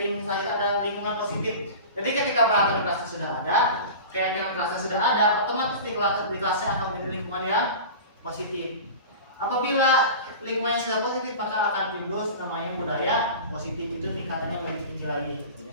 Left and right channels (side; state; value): both; inverted; correlation -0.34